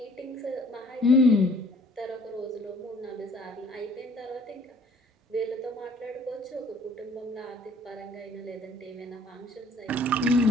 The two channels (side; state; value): both; normal; correlation 0.55